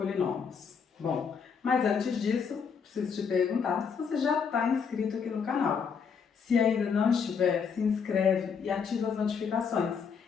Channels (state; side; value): quieter; right; 6.3 dB